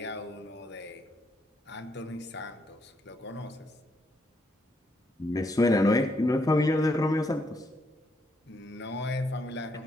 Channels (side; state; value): both; normal; correlation 0.76